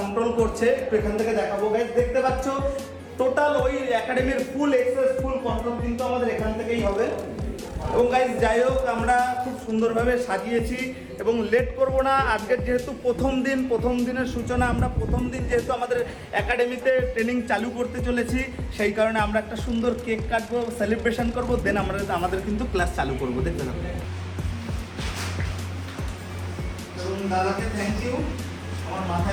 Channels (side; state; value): both; identical; correlation 1.00